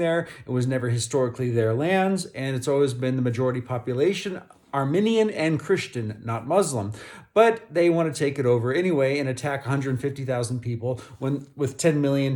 It was never historically their lands, and it's always been the majority population, Armenian and Christian, not Muslim. But they want to take it over anyway and attack 150,000 people with 10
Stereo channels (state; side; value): identical; both; correlation 1.00